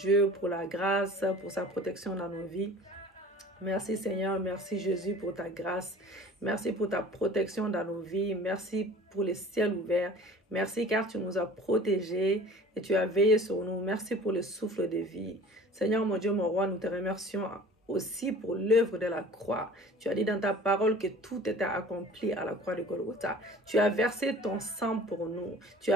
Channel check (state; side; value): normal; both; correlation 0.45